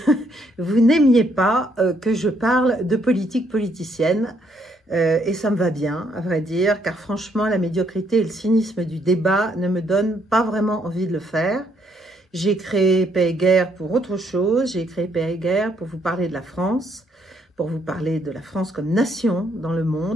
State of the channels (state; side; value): normal; both; correlation 0.71